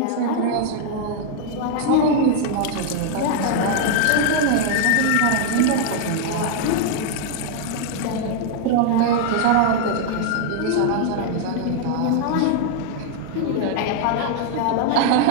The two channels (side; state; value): both; different; correlation 0.00